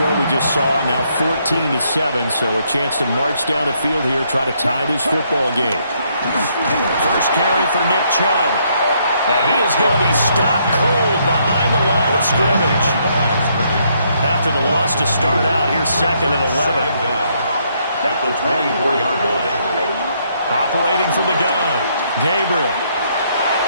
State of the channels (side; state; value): both; inverted; correlation -0.72